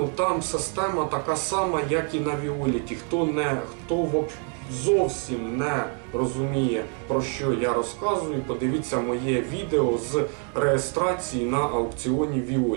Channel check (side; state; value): left; quieter; 39.9 dB